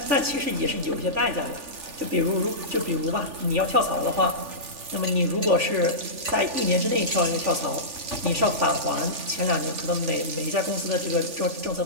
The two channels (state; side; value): late; left; 3.4 ms